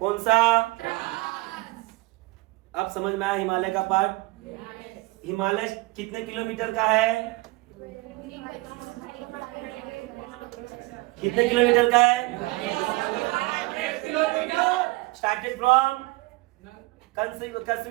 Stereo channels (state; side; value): quieter; left; 22.8 dB